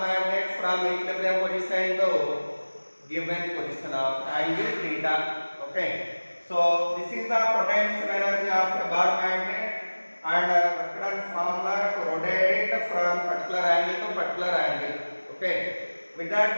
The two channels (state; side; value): inverted; both; correlation -1.00